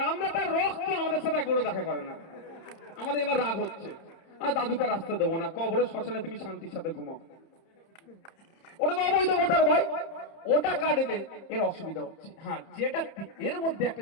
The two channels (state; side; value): late; right; 30 ms